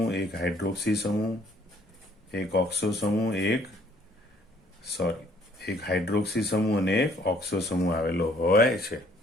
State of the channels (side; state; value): both; normal; correlation 0.61